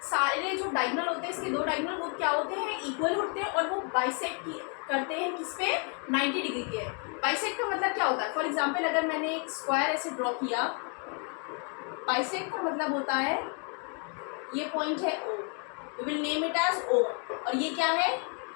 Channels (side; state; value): right; quieter; 38.6 dB